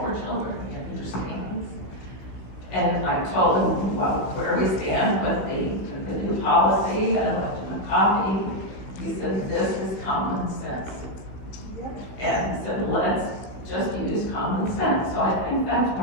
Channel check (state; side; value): late; right; 15 ms